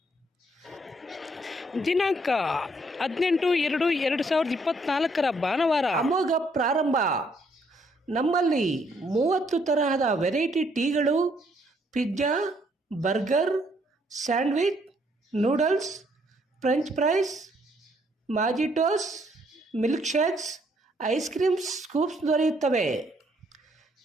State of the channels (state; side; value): normal; both; correlation 0.69